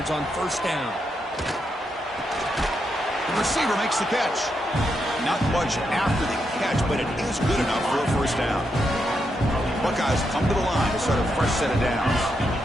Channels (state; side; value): normal; both; correlation 0.82